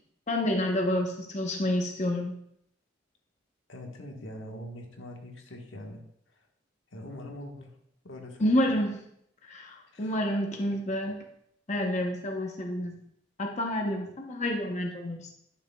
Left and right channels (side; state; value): both; normal; correlation 0.61